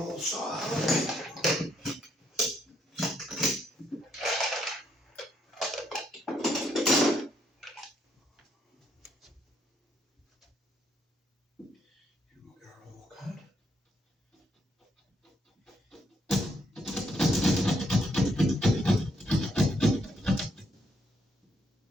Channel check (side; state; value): both; normal; correlation 0.74